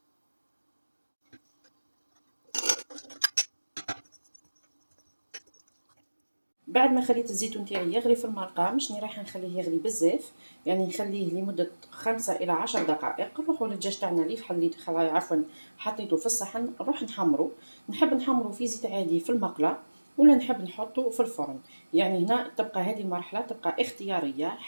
بعد ما خليت الزيتون تاعي يغلي في المرقه، مشني رايحه نخليه يغلي بزاف، يعني نخليه لمده 5 إلى 10 دقائق. نروحوا للدجاج تاعنا اللي عفوا حطيته في الصحن، نروح نحمرو. نحب نحمرو في زيت عادي في المقله، ولا نحب نحطه في الفرن. يعني هنا تبقى هذه المرحله تبقى اختياريه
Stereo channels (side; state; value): both; inverted; correlation -1.00